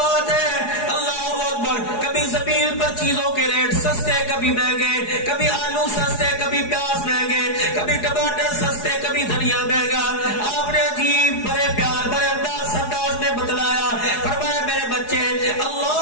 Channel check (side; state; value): right; late; 4.8 ms